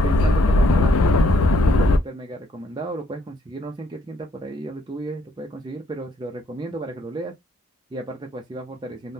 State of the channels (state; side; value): normal; both; correlation 0.69